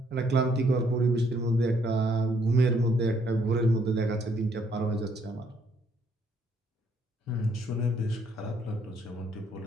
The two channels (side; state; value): both; normal; correlation 0.68